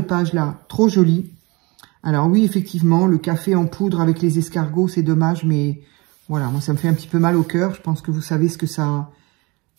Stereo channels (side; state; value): left; quieter; 25.5 dB